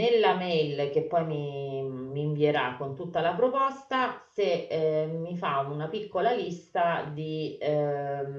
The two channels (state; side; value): identical; both; correlation 1.00